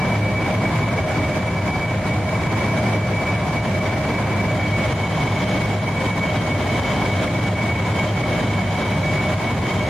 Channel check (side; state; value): both; normal; correlation 0.94